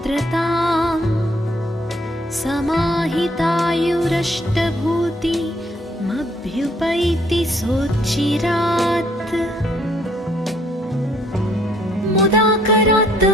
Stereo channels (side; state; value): both; normal; correlation 0.65